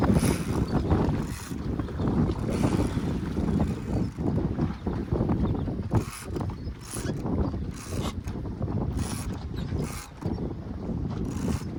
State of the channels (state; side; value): identical; both; correlation 1.00